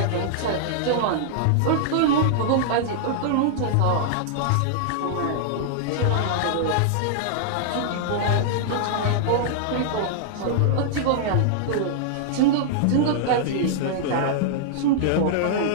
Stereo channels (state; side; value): different; both; correlation -0.01